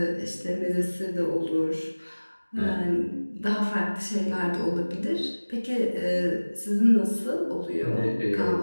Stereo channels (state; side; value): inverted; both; correlation -1.00